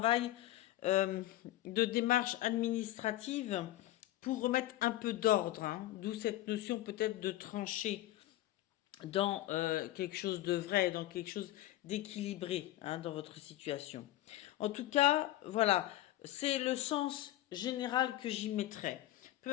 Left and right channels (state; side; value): quieter; right; 15.2 dB